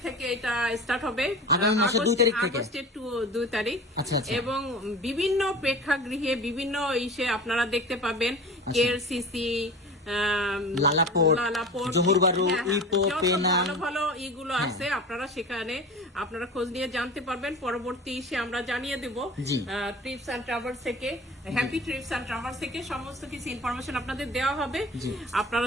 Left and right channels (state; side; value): normal; both; correlation 0.36